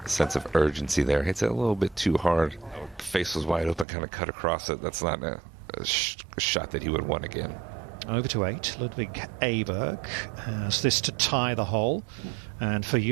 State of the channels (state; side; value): drops out; left; at 3.9 s